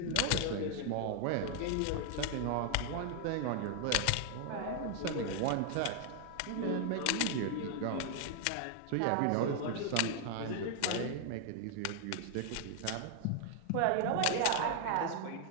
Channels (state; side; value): different; both; correlation 0.00